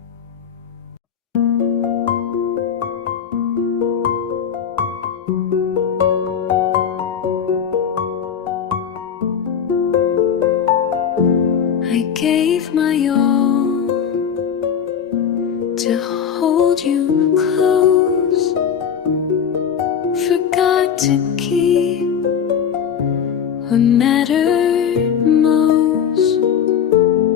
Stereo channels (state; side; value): quieter; right; 7.9 dB